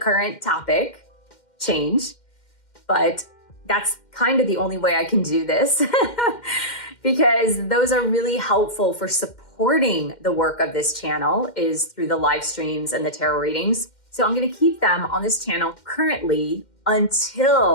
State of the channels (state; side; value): late; right; 2.1 ms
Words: topic change, but that's kind of the only way I can do this because those are really helpful for supporting the work of this channel, is through the live streams and the tarot readings. So I'm gonna keep them on this channel currently